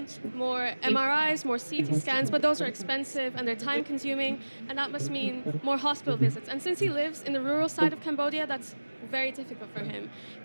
more MRIs, more CT scans, but those are expensive and they're time-consuming, and that must mean more hospital visits. And since he lives in the rural side of Cambodia, that's very difficult for him.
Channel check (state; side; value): inverted; both; correlation -1.00